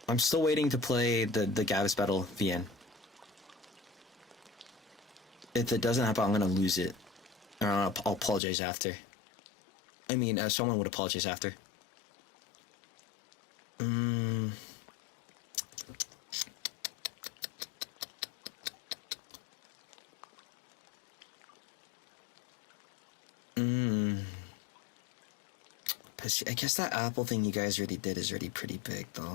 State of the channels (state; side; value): drops out; right; at 8.4 s